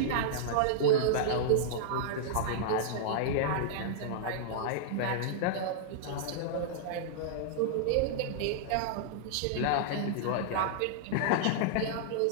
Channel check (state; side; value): different; both; correlation -0.02